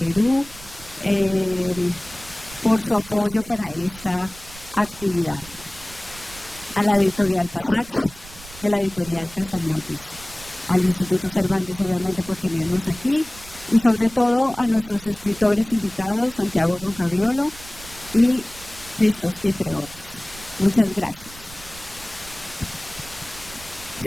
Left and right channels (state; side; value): noise; right; rumble, 18 dB below the sound